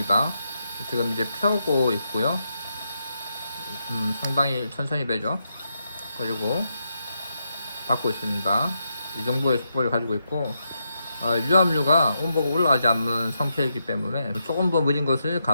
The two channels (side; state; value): both; inverted; correlation -0.83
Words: 지금 이제 펴고 있고요. 상당히 천천히 배죠. 그리고 받고 있습니다. 이 정도의 속도를 가지고 있고, 유압류가 온도가 올라가지 않는 상태이기 때문에 조금 더 느린 것을